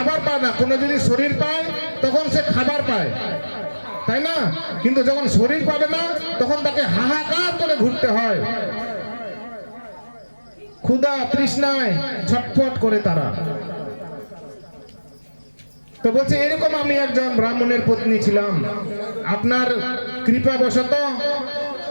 পায় না। কোনো যদি শরীর পায় তখন সে খাবার পায়, তাই না? কিন্তু যখন শরীর পাবে না তখন তাকে হাহাকার করে ঘুরতে হয়, ক্ষুধা তৃষ্ণায় ছটফট করে তারা। তো বলছে, এরকম আমি একজন ব্রাহ্মণের পত্নী ছিলাম। আপনার কৃপাবশত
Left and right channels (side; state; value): both; inverted; correlation -1.00